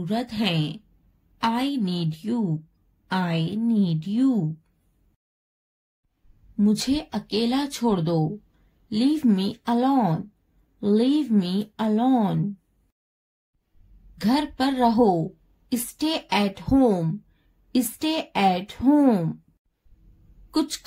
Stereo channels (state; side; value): identical; both; correlation 1.00